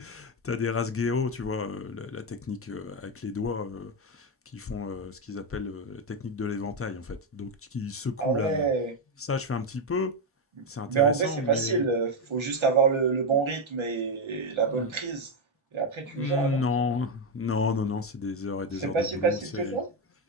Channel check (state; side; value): normal; both; correlation 0.06